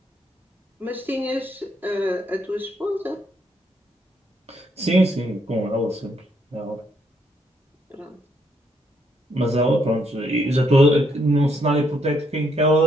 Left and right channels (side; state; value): both; normal; correlation 0.73